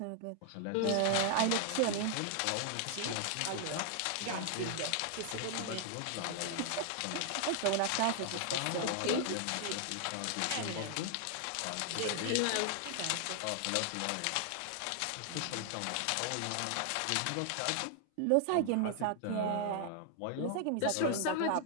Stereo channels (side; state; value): both; different; correlation 0.00